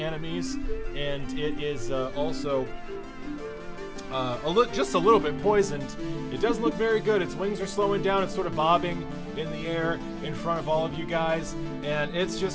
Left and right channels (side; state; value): both; identical; correlation 1.00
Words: and it is also just a little bit poisoned. It doesn't look very good. Its wings are slowing down. It's sort of bobbing in the air in front of all of you guys, and it's